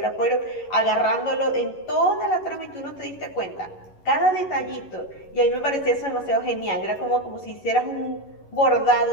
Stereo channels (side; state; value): right; late; 11 ms